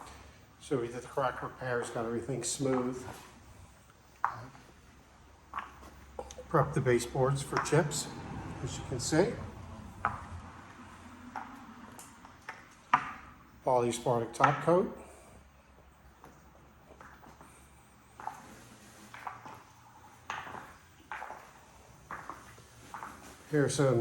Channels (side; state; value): both; identical; correlation 1.00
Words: So we did the crack repairs, got everything smooth. Prepped the baseboards for chips, as you can see. Polyaspartic top coat. Here are